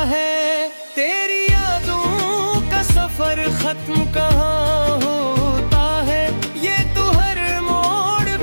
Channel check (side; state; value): both; inverted; correlation -1.00